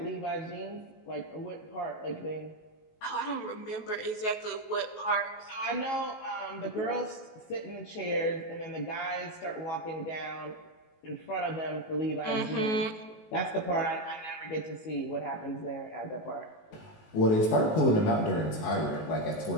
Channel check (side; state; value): right; late; 19 ms